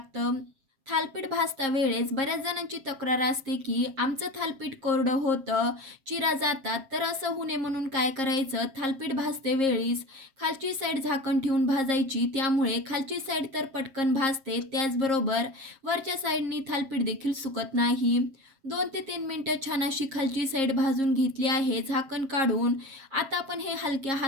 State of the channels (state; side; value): late; left; 7.4 ms